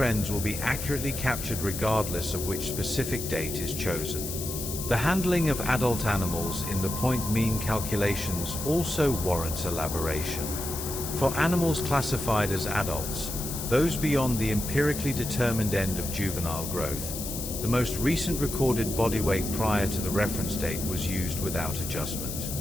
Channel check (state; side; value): noise; left; hiss, 6 dB below the sound